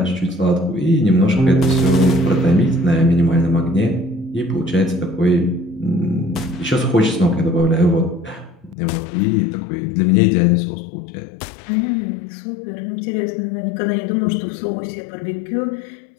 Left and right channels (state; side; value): drops out; right; at 8.8 s